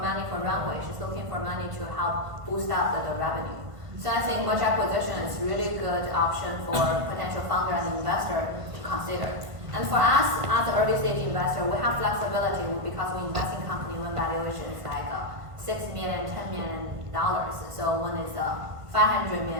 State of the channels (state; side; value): late; left; 1.6 ms